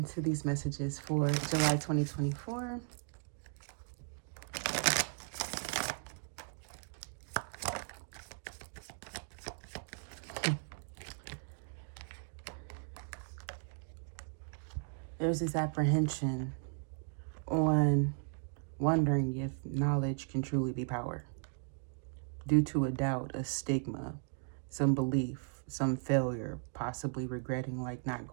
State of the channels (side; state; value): left; silent; 53 dB below the other